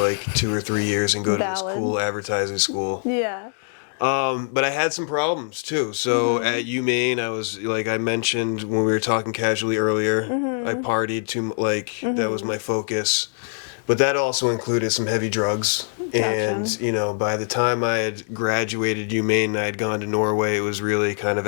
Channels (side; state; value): right; silent; digital silence